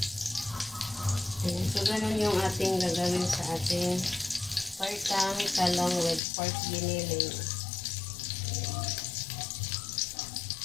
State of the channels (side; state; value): right; drops out; at 6.2 s